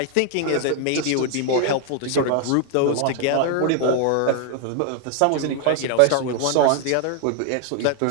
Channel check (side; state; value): both; different; correlation 0.00